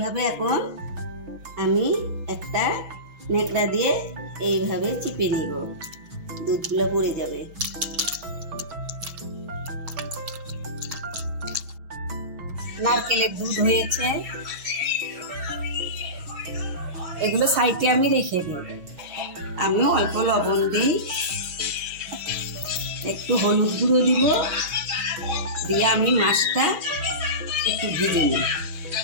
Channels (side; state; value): left; late; 6.1 ms